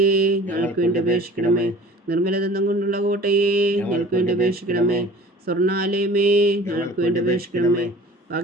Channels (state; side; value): normal; both; correlation 0.45